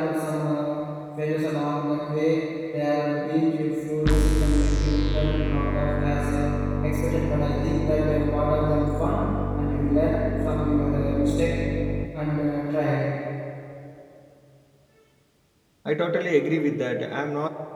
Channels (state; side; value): identical; both; correlation 1.00